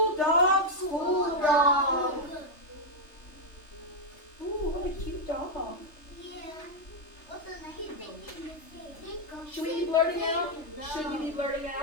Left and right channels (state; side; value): late; right; 3.3 ms